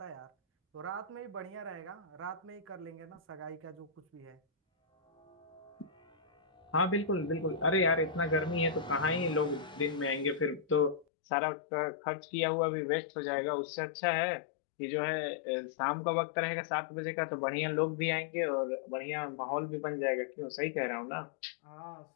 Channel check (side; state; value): right; drops out; at 11.1 s